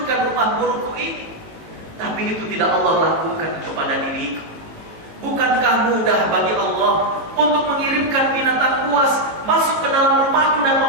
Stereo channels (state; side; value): late; left; 18 ms